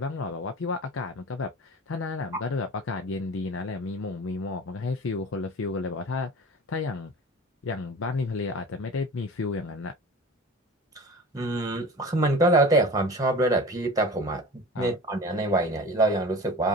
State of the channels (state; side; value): normal; both; correlation 0.37